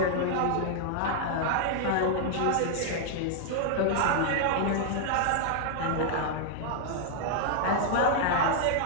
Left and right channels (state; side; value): different; both; correlation -0.01